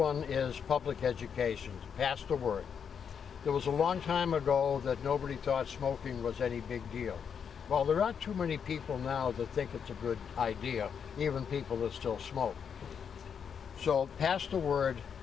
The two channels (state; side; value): quieter; right; 7.2 dB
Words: is public education, pass the word. There was a long time ago that nobody thought smoking was any big deal. Well, there aren't too many people now that think it's a good idea, even people that still smoke. So pass the word.